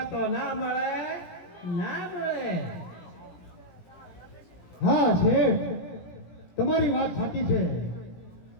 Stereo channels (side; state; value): right; late; 17 ms